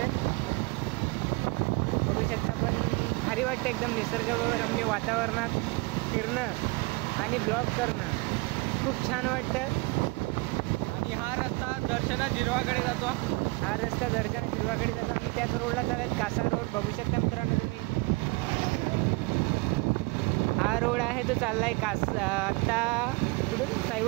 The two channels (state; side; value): quieter; left; 25.5 dB